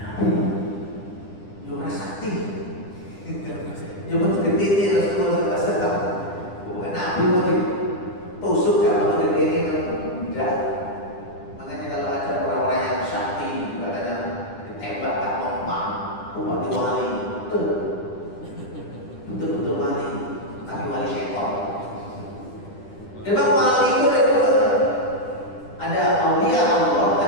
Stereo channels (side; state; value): right; late; 10 ms